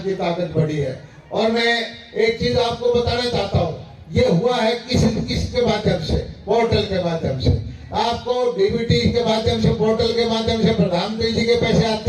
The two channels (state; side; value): identical; both; correlation 1.00